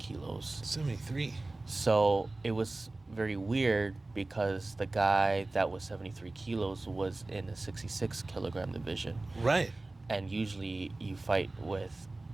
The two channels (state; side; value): quieter; left; 3.0 dB